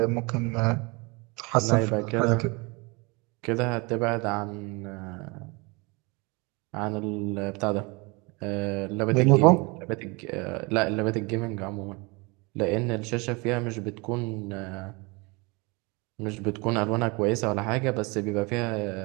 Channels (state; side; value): quieter; left; 27.7 dB